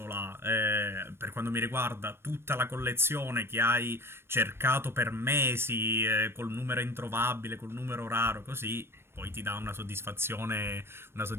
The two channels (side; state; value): left; late; 0.12 ms